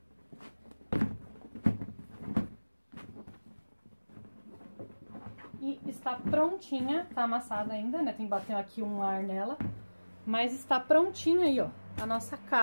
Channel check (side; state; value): both; inverted; correlation -1.00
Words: E está prontinha, tá amassada ainda, né? Tem que bater aqui um ar nela. Mas está prontinha aí, ó, a nossa